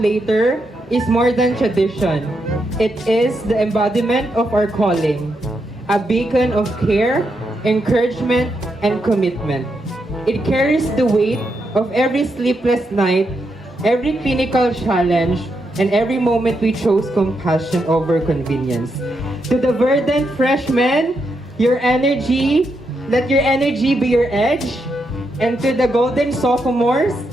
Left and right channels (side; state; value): both; normal; correlation 0.82